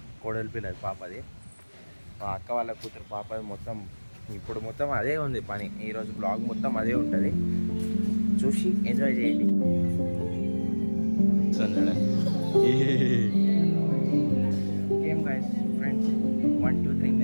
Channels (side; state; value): both; inverted; correlation -1.00